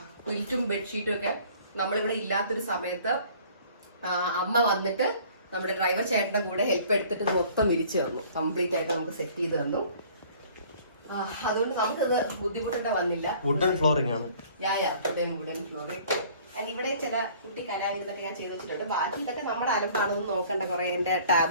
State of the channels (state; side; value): inverted; both; correlation -0.53